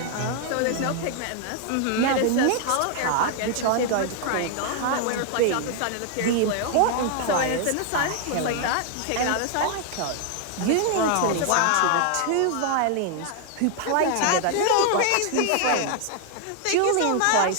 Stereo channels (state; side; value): different; both; correlation 0.00